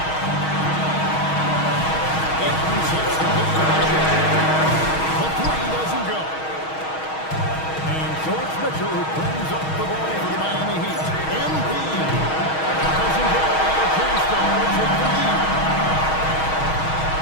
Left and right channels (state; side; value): late; right; 6.3 ms